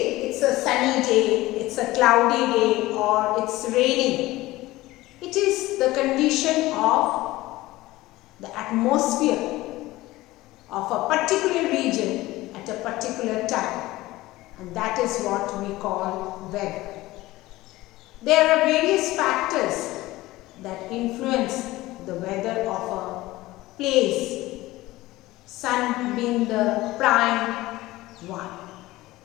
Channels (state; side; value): quieter; right; 18.1 dB